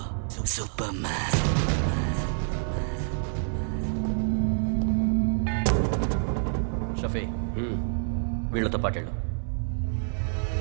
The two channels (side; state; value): left; silent; 60 dB below the other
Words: షఫీ, వీళ్ళతో పాటేళ్ళు.